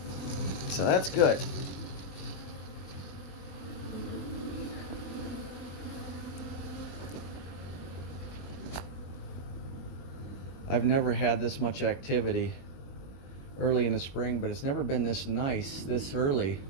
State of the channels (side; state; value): right; late; 22 ms